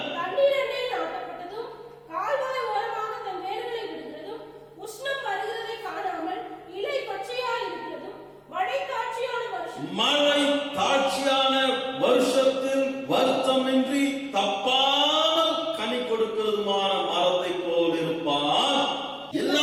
தண்ணீரண்டை நாட்டப்பட்டதும் கால்வாய் ஓரமாக தன் வேர்களை விடுகிறதும் உஷ்ணம் வருகிறதை காணாமல் இலை பச்சையாய் இருக்கிறதும் மழை தாட்சியான வருஷத்தில் வருத்தமின்றி தப்பாமல் கனி கொடுக்கிறதுமான மரத்தை போல் இருப்பான்.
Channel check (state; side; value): identical; both; correlation 1.00